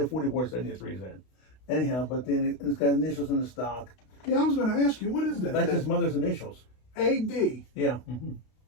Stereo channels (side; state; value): right; late; 32 ms